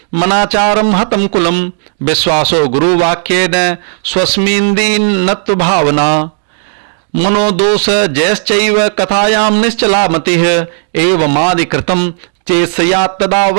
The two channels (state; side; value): silent; left; digital silence